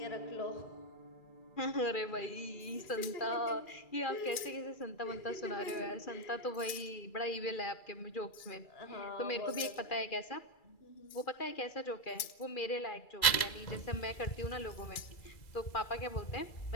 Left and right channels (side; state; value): right; late; 2.3 ms